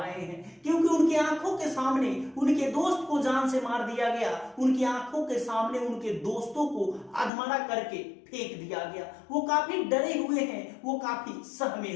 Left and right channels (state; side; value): drops out; right; at 7.3 s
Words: हैं, क्योंकि उनकी आंखों के सामने उनके दोस्त को जान से मार दिया गया। उनकी आंखों के सामने उनके दोस्तों को अधमरा करके फेंक दिया गया। वो काफी डरे हुए हैं, वो काफी सहमे